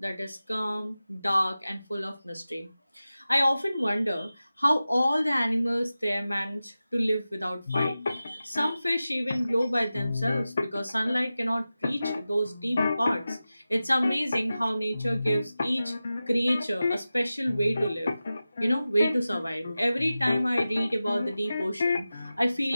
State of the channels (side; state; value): both; inverted; correlation -0.95